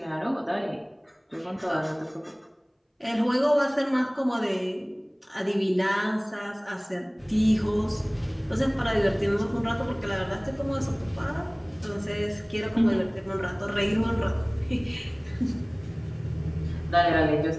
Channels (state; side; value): identical; both; correlation 1.00